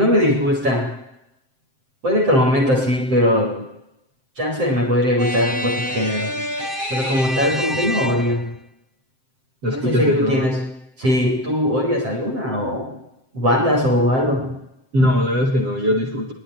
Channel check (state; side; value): late; left; 7.6 ms